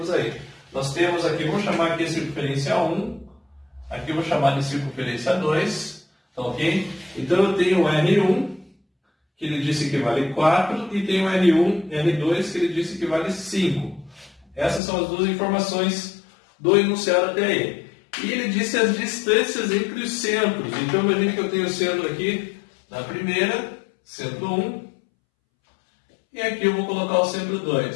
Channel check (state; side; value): drops out; right; at 14.8 s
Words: aí. Nós temos aqui, vamos chamar aqui a circunferência 1, aqui eu vou chamar de circunferência 2. Tá ok? Então eu tenho o R1, que ele disse que vale 4, e tenho o R1, R2, que ele disse que vale 5. Essas são as duas informações do enunciado até aí. E ele disse as distâncias entre os centros. Então imagine que eu tenho o centro aqui na primeira, centro 1, e aqui eu vou colocar o centro